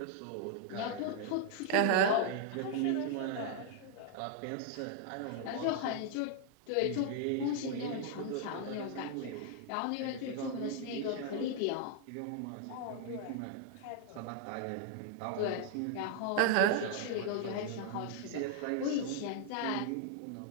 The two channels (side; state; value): both; different; correlation -0.01